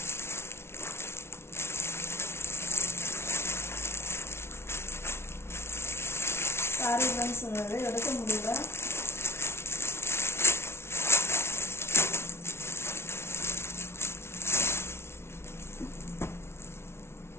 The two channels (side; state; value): right; late; 0.12 ms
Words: சாரி ஃப்ரெண்ட்ஸ், சொன்னது எடுக்க முடியல.